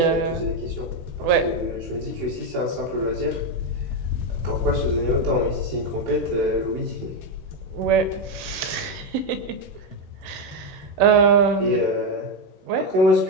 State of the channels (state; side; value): late; left; 16 ms